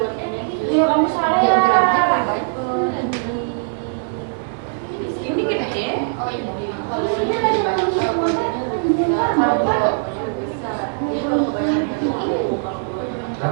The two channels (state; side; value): silent; left; digital silence